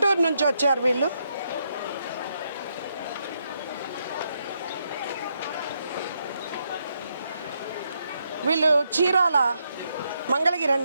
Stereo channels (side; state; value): both; inverted; correlation -0.79